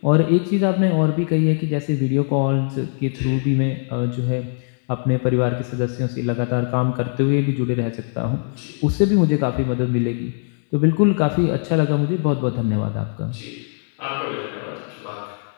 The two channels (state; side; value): silent; right; digital silence